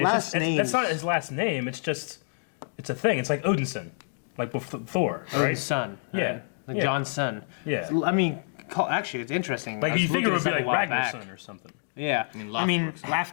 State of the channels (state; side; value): silent; right; digital silence